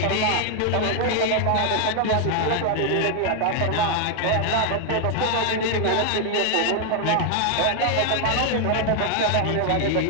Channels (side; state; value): both; different; correlation 0.00